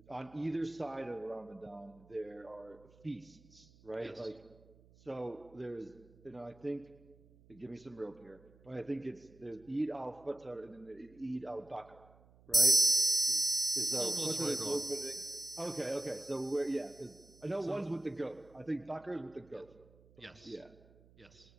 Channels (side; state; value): right; noise; hum, 26 dB below the sound